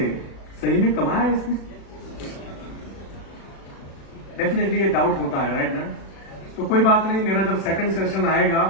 सही में कमाया है इसने, डेफिनेटली ये डाउट होता है, राइट ना। तो कोई बात नहीं, मेरा जब सेकंड सेशन आएगा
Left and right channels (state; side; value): late; right; 36 ms